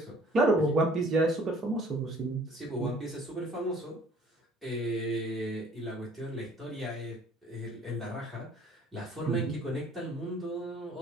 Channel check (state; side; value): normal; both; correlation 0.55